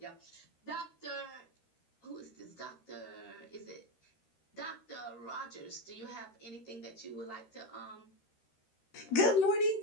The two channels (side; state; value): right; late; 13 ms